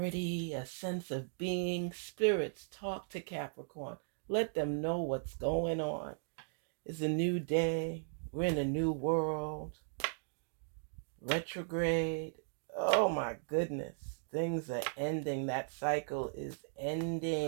a sense of being? Spirits, talk to Capricorn. Let them know what's going on. It's a new day. We're in a new world. Retrograde. Oh my goodness. Things are ending. That cycle is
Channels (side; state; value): left; silent; digital silence